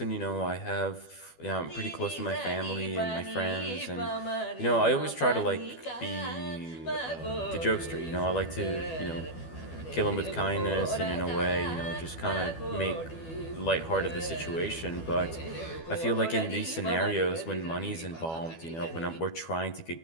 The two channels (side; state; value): right; late; 12 ms